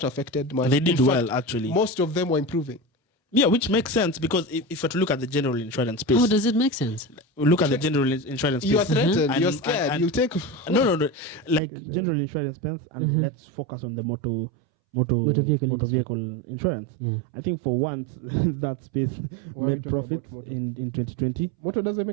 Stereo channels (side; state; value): left; drops out; at 11.6 s